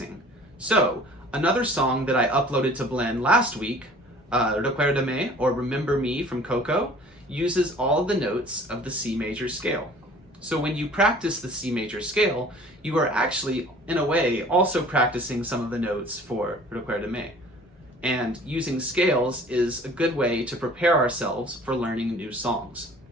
So, another song that I uploaded to Blend last week, Recuérdame, or Remember Me from Coco, uses all of the notes of the C major scale. So when you practice the C major scale, you are actually, in a way, also practicing some of the notes for Recuérdame. And using scales is a good way to prepare ourselves for learning new songs.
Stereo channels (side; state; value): both; normal; correlation 0.49